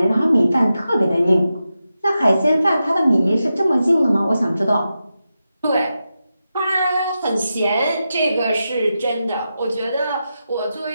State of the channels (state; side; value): inverted; both; correlation -0.90